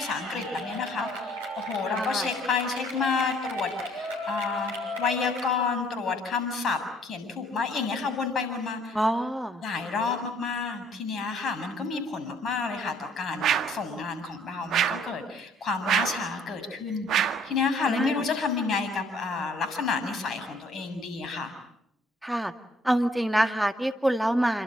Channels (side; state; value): both; normal; correlation 0.61